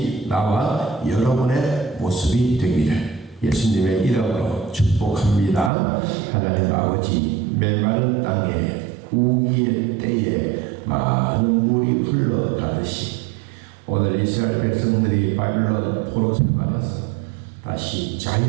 나와 여러분의 모습이 되기를 예수님의 이름으로 축복합니다. 하나님 아버지, 메마른 땅에 우기의 때에 많은 물이 흘러가듯이 오늘 이스라엘 백성들이 바빌론 포로 생활에서 다시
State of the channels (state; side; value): drops out; left; at 5.7 s